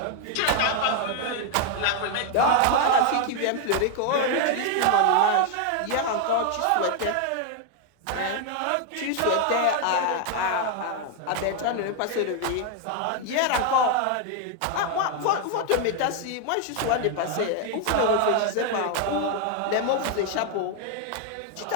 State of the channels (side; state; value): both; different; correlation 0.01